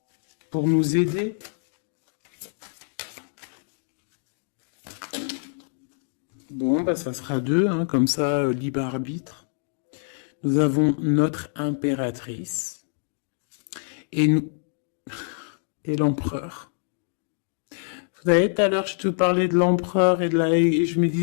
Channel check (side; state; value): right; silent; digital silence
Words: Pour nous aider. Bon, bah ça sera deux, hein, comme ça, libre arbitre. Nous avons notre impératrice et nous et l'empereur. Vous savez, tout à l'heure, je te parlais de l'empereur et je me